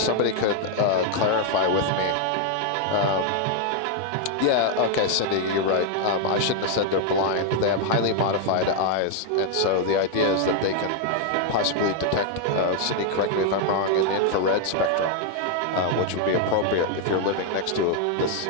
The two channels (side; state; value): both; different; correlation 0.00